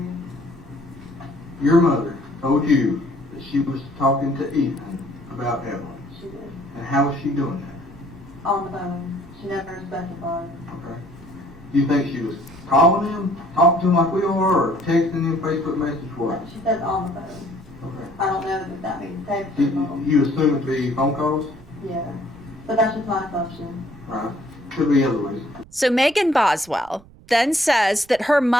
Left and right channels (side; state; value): right; noise; rumble, 24 dB below the sound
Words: Your mother told you that she was talking to Ethan about Evelyn. She did. And how was she doing that? On the phone. She never specified. Okay. Do you think she was calling him, talking to him like we are, or texting him Facebook message, what? She says on the phone. Okay. I don't know if that means text or You, call. you assume it to be phone calls? Yeah. But that's just my assumption. Right. Could be other ways. So Megan Boswell then says that her